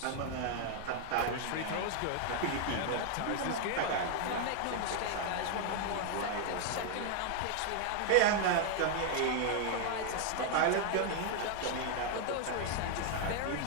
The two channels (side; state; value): both; different; correlation 0.00